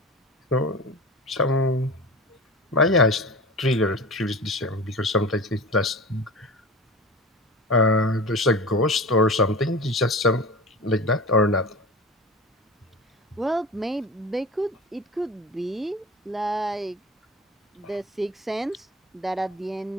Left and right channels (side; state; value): both; normal; correlation 0.32